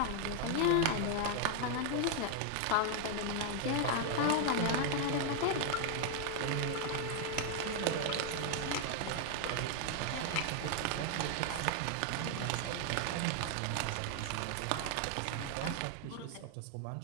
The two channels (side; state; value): both; different; correlation 0.00